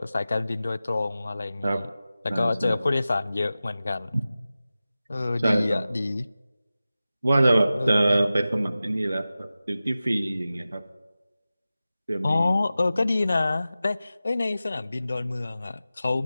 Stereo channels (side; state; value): both; inverted; correlation -0.95